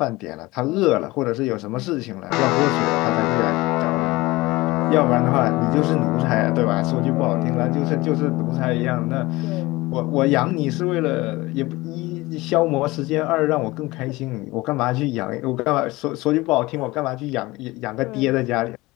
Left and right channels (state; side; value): quieter; right; 20.6 dB